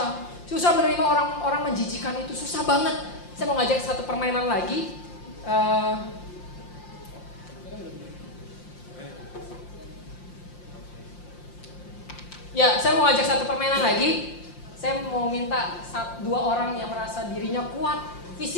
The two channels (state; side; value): late; right; 5.7 ms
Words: Susah menerima orang-orang menjijikan itu susah banget. Saya mau ngajak satu permainan lagi. Ya, saya mau ngajak satu permainan lagi. Saya mau minta 2 orang yang merasa dirinya kuat